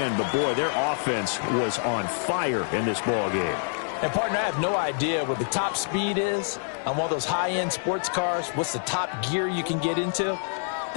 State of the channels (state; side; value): silent; right; digital silence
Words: but, boy, their offense was on fire in this ball game. And, partner, I have no idea what the top speed is on one of those high-end sports cars. What's the top gear you can get into?